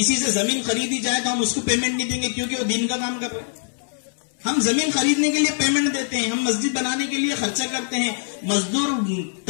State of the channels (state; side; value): silent; right; 63 dB below the other